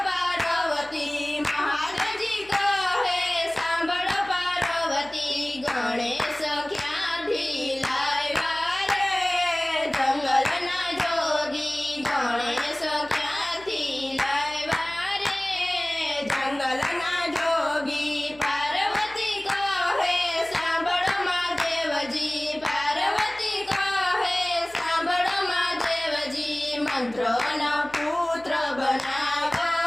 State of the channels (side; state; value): left; noise; hum, 26 dB below the sound